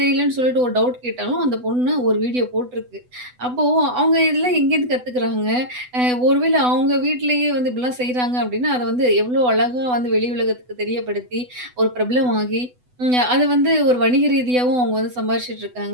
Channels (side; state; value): left; late; 8.0 ms